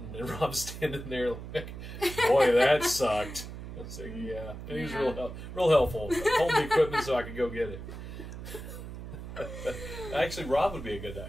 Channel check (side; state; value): right; noise; hum, 10 dB below the sound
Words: and Rob's standing there like, boy, that sucked. I was like, yeah. And he was real helpful. Hold the equipment so I could go get it. Actually, Rob would be a good